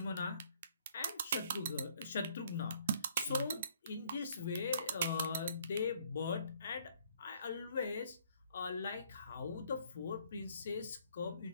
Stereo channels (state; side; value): inverted; both; correlation -0.62